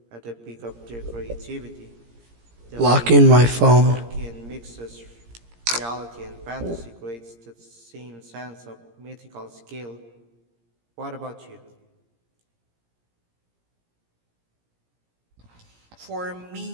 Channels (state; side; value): late; left; 17 ms